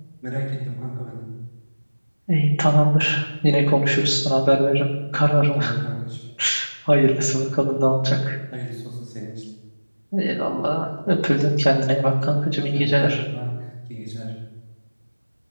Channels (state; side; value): inverted; both; correlation -1.00